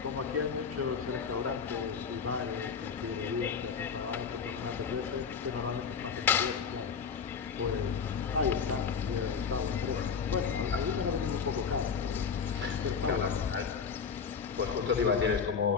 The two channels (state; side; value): quieter; right; 6.2 dB